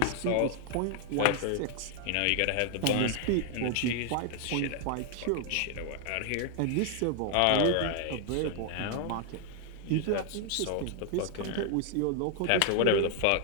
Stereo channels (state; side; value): different; both; correlation 0.00